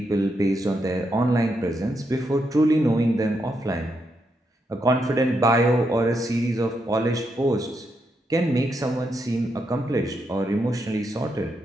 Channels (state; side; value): normal; both; correlation 0.81